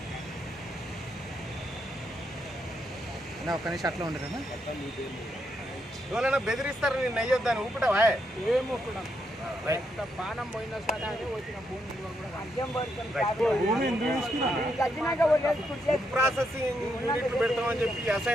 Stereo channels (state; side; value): normal; both; correlation 0.79